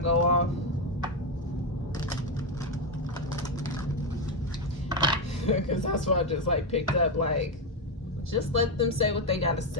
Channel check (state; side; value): normal; both; correlation 0.07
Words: go off. Because that's what I just like picked up, like, just let them say what they gotta